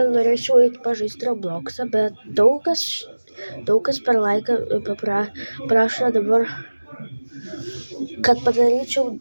norėčiau eiti pažaisti Robloxą, bet daug kas per laiką prašo dabar, kad padaryčiau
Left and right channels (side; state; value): both; inverted; correlation -1.00